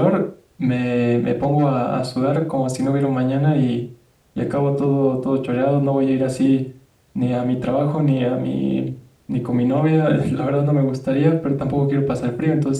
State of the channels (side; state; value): both; identical; correlation 1.00